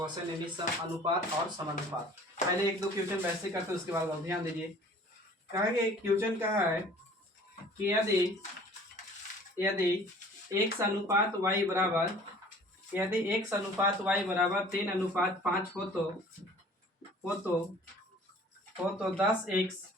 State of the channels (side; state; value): both; normal; correlation 0.49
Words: यानी अनुपात और समानुपात। पहले एक दो क्वेश्चन वैसे करते हैं, उसके बाद आप ध्यान दीजिए। कहा कि क्वेश्चन कहा है कि यदि x अनुपात y बराबर 3:5 हो तो 10x